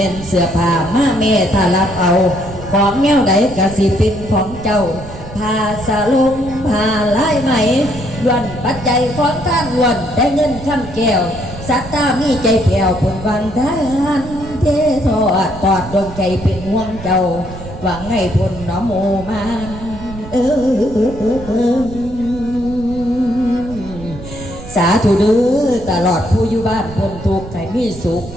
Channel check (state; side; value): noise; right; rumble, 13 dB below the sound